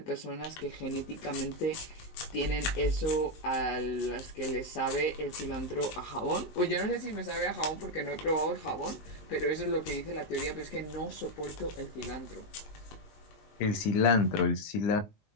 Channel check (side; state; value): right; late; 19 ms